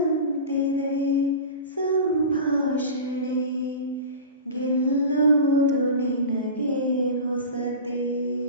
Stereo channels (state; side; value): inverted; both; correlation -0.31